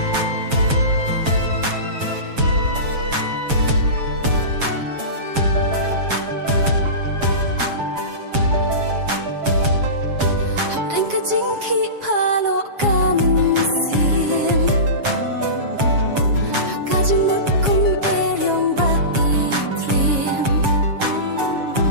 Jing ki palo kamen sim. Kajing mut kum eryong ba itrim.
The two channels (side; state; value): left; late; 7.3 ms